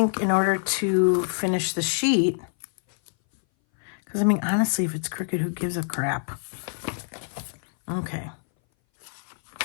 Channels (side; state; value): right; silent; 59 dB below the other